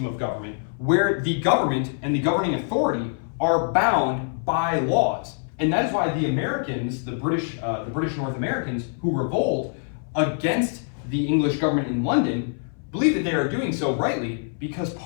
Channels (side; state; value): right; silent; 60 dB below the other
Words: of government where the government and the governing authority are bound by laws. And that is why the Americans, the British North Americans who revolt against the English government in London, believe that they are doing so rightly because